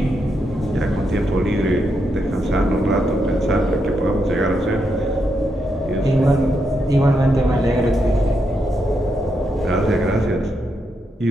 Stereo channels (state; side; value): normal; both; correlation 0.82